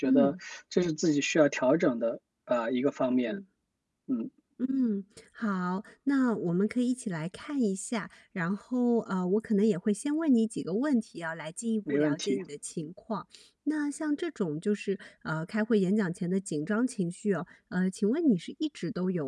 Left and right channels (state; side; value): identical; both; correlation 1.00